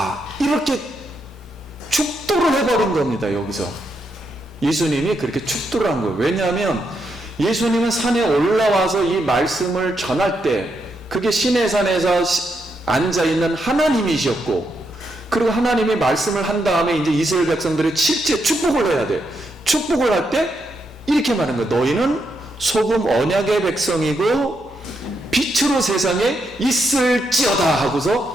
이렇게 축도를 해버린 겁니다. 여기서 예수님이 그렇게 축도를 한 거예요. 왜냐하면 예수님은 산에 올라와서 이 말씀을 전할 때 그게 시내산에서 앉아있는 하나님이셨고, 그리고 하나님이 말씀을 한 다음에 이제 이스라엘 백성들이 실제 축복을 해야 돼. 축복을 할 때 이렇게 말하는 거예요. 너희는 소금 언약의 백성이고 빛으로 세상에 있을지어다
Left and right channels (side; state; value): both; normal; correlation 0.80